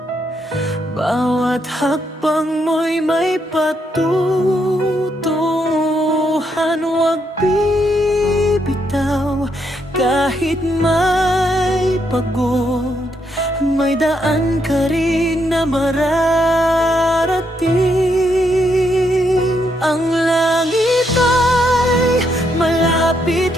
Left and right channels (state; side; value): normal; both; correlation 0.77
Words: Bawat hakbang mo'y may patutunguhan. Huwag bibitaw kahit may pagod. May daan ka rin na mararating. Ang langit ay malapit